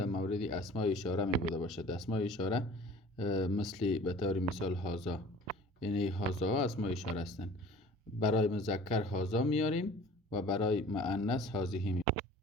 مورد اسماء اشاره می بوده باشد. اسماء اشاره مثل به طور مثال هازا، یعنی هازا ها اسماء اشاره هستند. برای مذکر هازا میاریم و برای مؤنث هازیه میاریم.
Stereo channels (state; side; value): normal; both; correlation 0.46